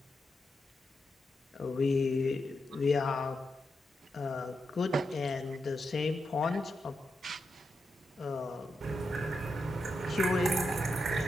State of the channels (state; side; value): normal; both; correlation 0.86